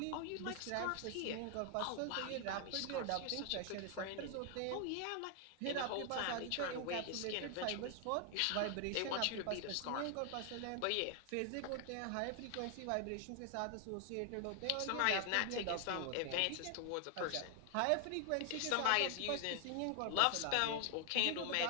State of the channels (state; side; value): different; both; correlation 0.00